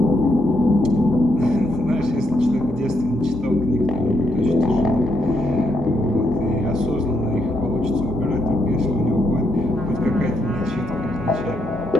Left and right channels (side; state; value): both; normal; correlation 0.78